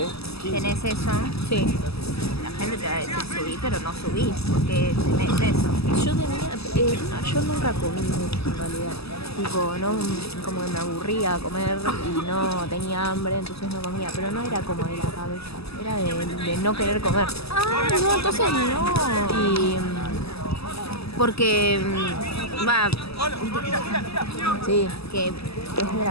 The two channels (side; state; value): right; late; 0.78 ms